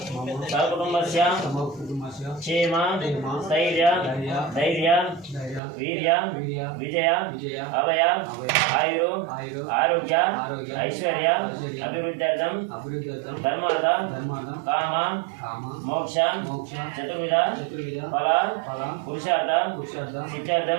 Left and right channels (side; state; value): left; drops out; at 5.6 s